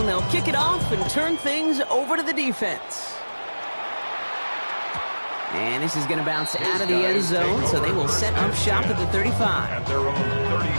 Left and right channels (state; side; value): inverted; both; correlation -1.00